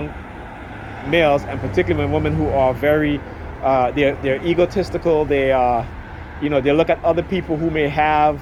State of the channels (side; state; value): both; identical; correlation 1.00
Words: males, and particularly when women who are very they're egotistical, they they look at other people who may have